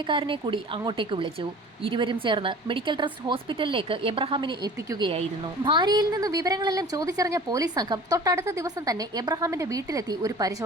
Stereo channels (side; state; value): both; normal; correlation 0.43